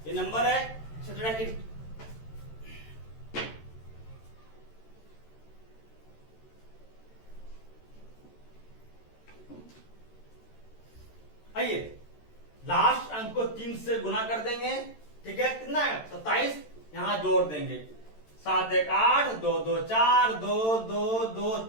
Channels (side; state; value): right; late; 13 ms